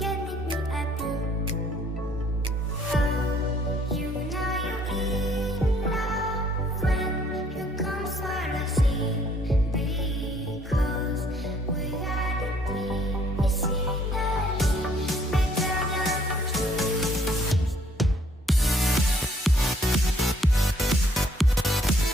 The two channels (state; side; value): normal; both; correlation 0.63